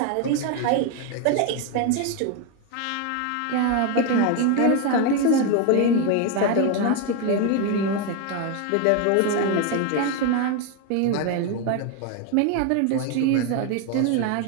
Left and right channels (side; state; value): both; different; correlation 0.02